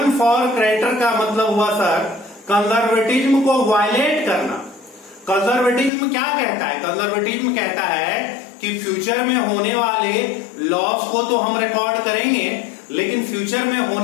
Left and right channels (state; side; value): drops out; right; at 5.9 s